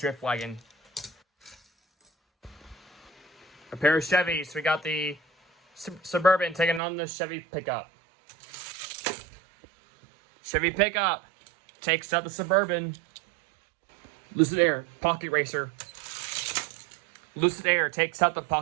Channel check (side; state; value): left; drops out; at 6.8 s